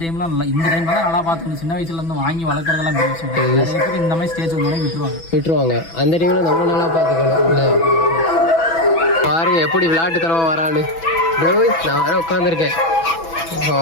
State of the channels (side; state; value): right; late; 6.1 ms